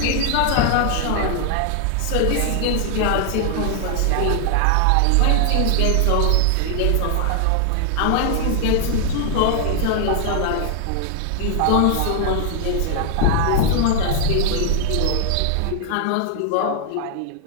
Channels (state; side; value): different; both; correlation 0.00